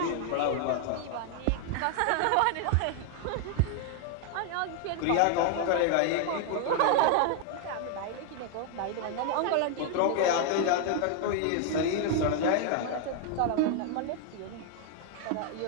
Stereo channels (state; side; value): different; both; correlation 0.00